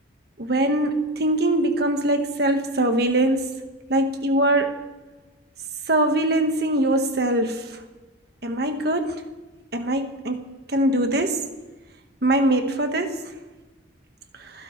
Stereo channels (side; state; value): both; normal; correlation 0.20